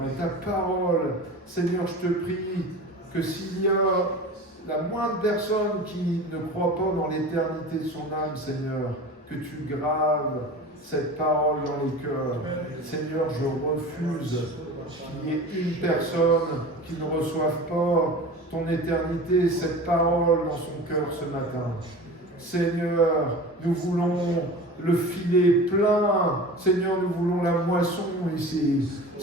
et ta parole. Seigneur, je te prie que s'il y a la moindre personne qui ne croit pas dans l'éternité de son âme, Seigneur, que tu graves cette parole dans les cœurs. Seigneur, je refuse qu'il y ait une personne qui ne reçoive pas ton éternité, cette parole dans son cœur ce matin. Seigneur, nous voulons le filet plein. Seigneur, nous voulons la moisson ici.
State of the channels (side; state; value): both; normal; correlation 0.35